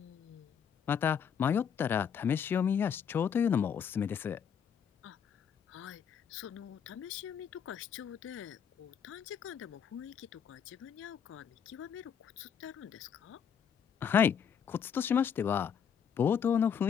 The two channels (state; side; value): quieter; right; 7.7 dB